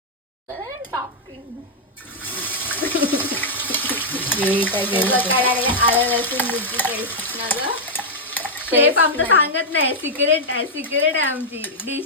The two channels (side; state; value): both; normal; correlation -0.04